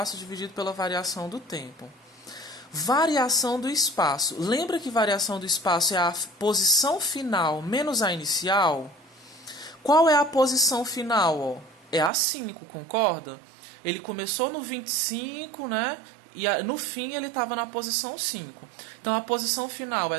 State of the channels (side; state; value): left; drops out; at 12.1 s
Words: dividido pela variação do tempo. Variação do espaço. Lembra que variação do espaço é a posição final menos a inicial? Qual é a posição final, ó? É a 5, concorda? Ele começou no 25, né? E no fim ele estava na posição 5. Então a posição final é